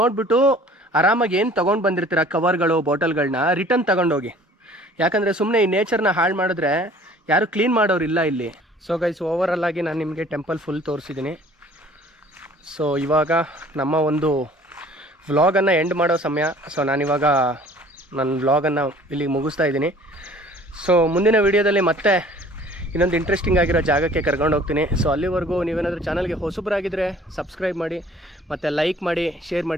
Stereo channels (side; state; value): both; normal; correlation 0.51